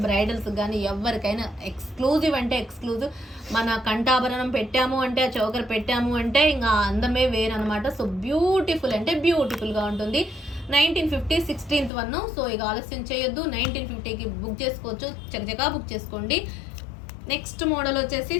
బ్రైడల్స్ కానీ ఎవరికైనా ఎక్స్క్లూజివ్ అంటే ఎక్స్క్లూజివ్. మన కంఠాభరణం పెట్టాము అంటే, ఆ చౌకర్ పెట్టాము అంటే ఇంకా అందమే వేరనమాట. సో బ్యూటిఫుల్ అంటే బ్యూటిఫుల్గా ఉంటుంది. 1950 16th 1. సో ఇక ఆలస్యం చేయొద్దు, 1950కి బుక్ చేసుకోవచ్చు, చకచకా బుక్ చేసుకోండి. నెక్స్ట్ మోడల్ వచ్చేసి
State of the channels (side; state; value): right; drops out; at 11.9 s